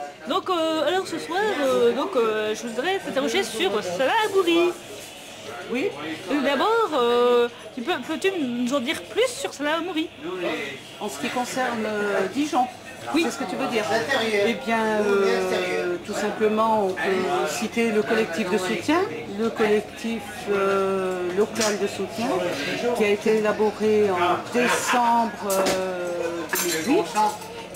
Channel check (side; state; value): both; identical; correlation 1.00